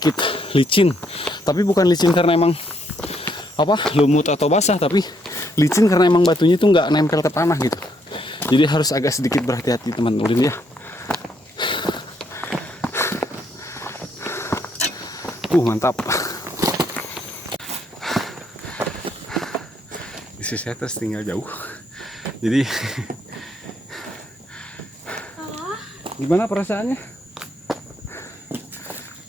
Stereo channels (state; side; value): normal; both; correlation 0.72